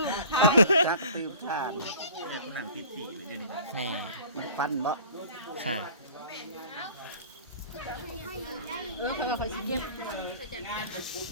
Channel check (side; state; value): both; inverted; correlation -0.45